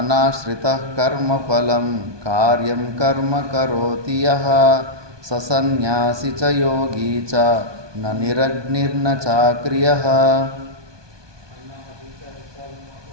కర్మఫలం కార్యం కర్మ కరోతి యః ససన్యాసి చ యోగీ చ న నిరగ్నిర్న చాక్రియః.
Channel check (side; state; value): left; late; 1.2 ms